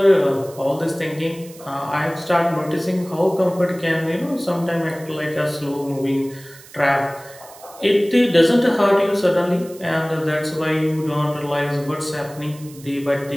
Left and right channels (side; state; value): right; noise; hiss, 21 dB below the sound